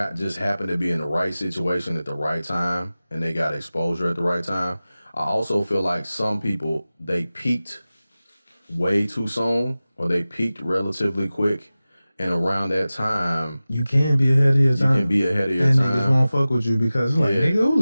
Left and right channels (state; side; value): inverted; both; correlation -0.97